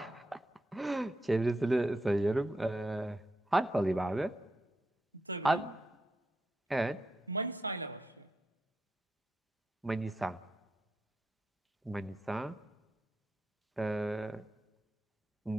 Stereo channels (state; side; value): normal; both; correlation 0.85